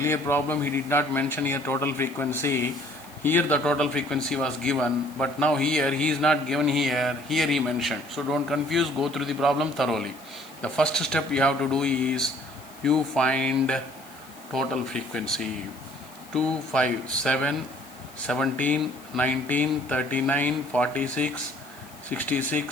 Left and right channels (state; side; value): noise; left; hiss, 22 dB below the sound